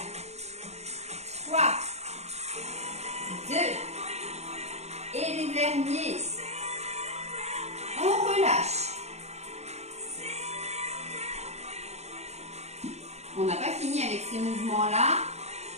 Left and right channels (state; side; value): late; left; 0.32 ms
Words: 3, 2, et les derniers, on relâche. On n'a pas fini avec ces mouvements-là.